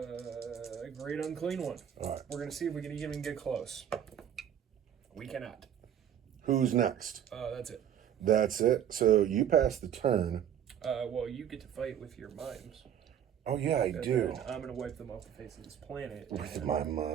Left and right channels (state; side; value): quieter; left; 9.6 dB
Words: Great Unclean One. All right. We're going to see if we can even get close. We cannot. Who's next? That's it. That's it. So you pass the turn. Well, you get to fight with your mimes. Oh, yeah, I do. I'm going to wipe them off the face of this planet. With my